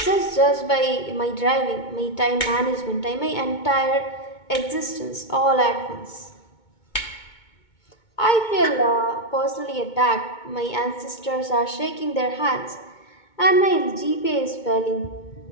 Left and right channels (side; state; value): right; late; 2.2 ms